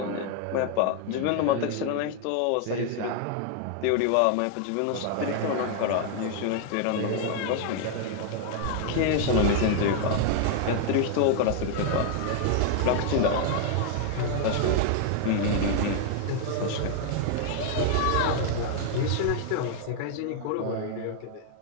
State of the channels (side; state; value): both; different; correlation 0.00